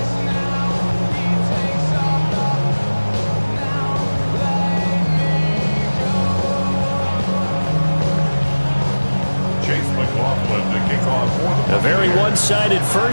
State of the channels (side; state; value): both; inverted; correlation -1.00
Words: A very one-sided